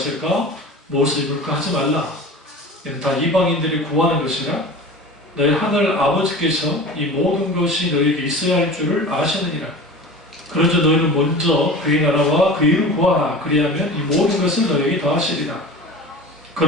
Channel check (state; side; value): normal; both; correlation 0.36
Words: 무엇을 입을까 하지 말라. 이는 다 이방인들이 구하는 것이라. 너희 하늘 아버지께서 이 모든 것이 너희에게 있어야 할 줄을 아시느니라. 그러자 너희는 먼저 그의 나라와 그의 일을 구하라. 그리하면 이 모든 것을 너희에게 더하시리라.